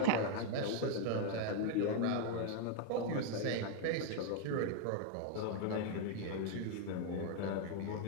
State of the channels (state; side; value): different; both; correlation 0.00